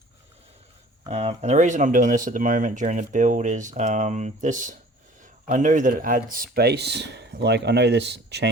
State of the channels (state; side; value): normal; both; correlation 0.48